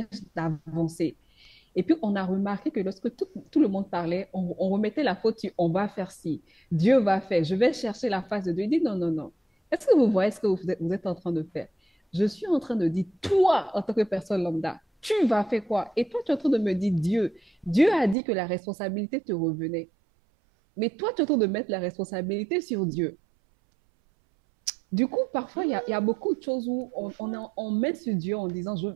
d'avancer. Et puis on a remarqué que lorsque tout le monde parlait, on remettait la faute sur on va faire ci, Dieu va faire, je vais chercher la face de Dieu. Il dit non, non, non. Est-ce que vous voyez ce que vous êtes en train de faire? Je suis en train de dire, toi, en tant que personne lambda, tu vas faire quoi? Et toi, tu es en train de me dire Dieu. Dieu a dit que la responsabilité te revenait. Mais toi, tu es en train de mettre la responsabilité sur Dieu. Du coup, parfois, il y a beaucoup de choses où on met sur Dieu en disant, je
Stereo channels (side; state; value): left; drops out; at 18.2 s